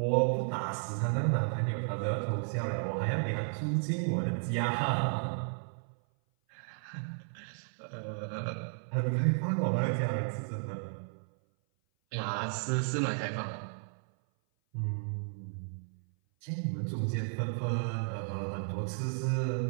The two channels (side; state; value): left; silent; 55 dB below the other